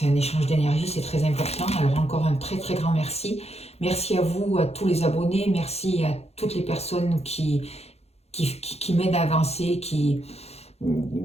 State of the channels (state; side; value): late; right; 0.30 ms